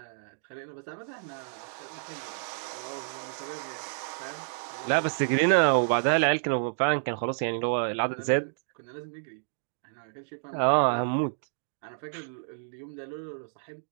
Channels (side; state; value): left; silent; digital silence